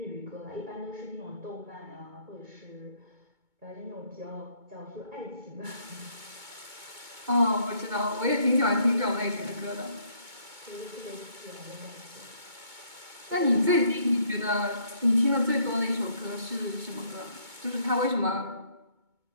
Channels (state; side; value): late; left; 2.2 ms